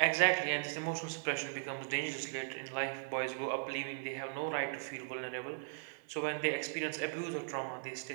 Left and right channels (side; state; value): left; silent; digital silence